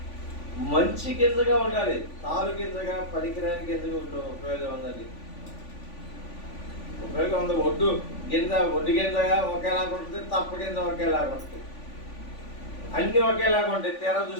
మంచి గింజగా ఉండాలి. తాలు గింజగా పనికిరాని గింజగా ఉపయోగం ఉందండి. ఉపయోగం ఉంది. ఒడ్డు గింజగా ఒకేలాగా ఉంటుంది, తప్ప గింజ ఒకేలాగా ఉంటుంది, అన్నీ ఒకేలాగా ఉంటాయి. తీరా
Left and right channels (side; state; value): right; late; 3.5 ms